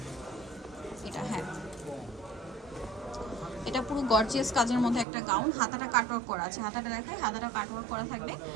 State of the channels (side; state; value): left; drops out; at 5.1 s